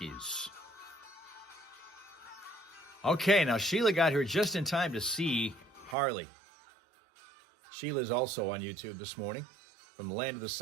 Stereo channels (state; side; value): drops out; left; at 6.0 s